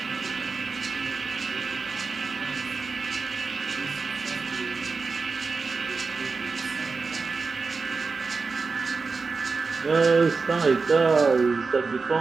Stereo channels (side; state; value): left; quieter; 4.4 dB